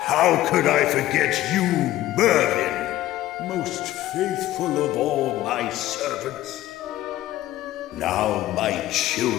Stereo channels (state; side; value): quieter; right; 14.8 dB